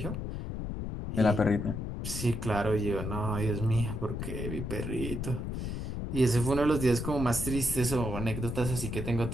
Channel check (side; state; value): left; noise; rumble, 4 dB below the sound